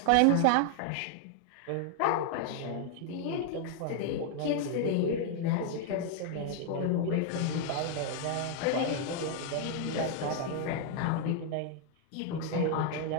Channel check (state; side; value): different; both; correlation 0.00